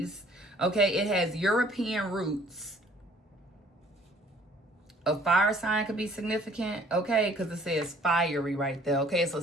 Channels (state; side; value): normal; both; correlation 0.57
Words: Okay, it has European roots. A fire sign could be significant, okay, because it says fiery right there. Okay, it's a